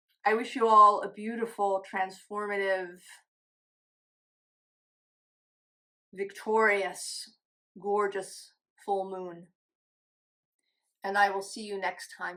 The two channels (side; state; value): both; identical; correlation 1.00